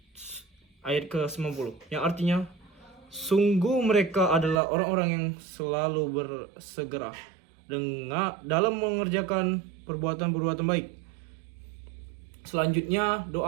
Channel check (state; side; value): drops out; left; at 4.6 s